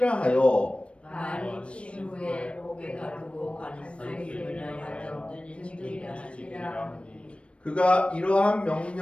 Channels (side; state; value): right; late; 0.060 ms